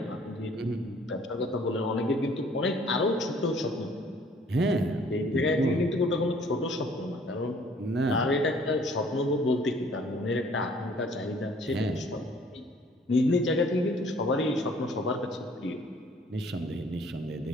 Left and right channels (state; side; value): normal; both; correlation 0.57